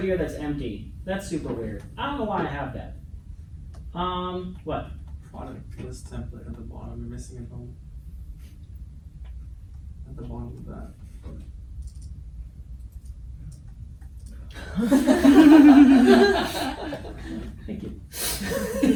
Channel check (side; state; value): both; identical; correlation 1.00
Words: that's empty. That's super weird. I don't know why I have that. What? Product list template at the bottom. You're missing a home. At the bottom of that. Thank you.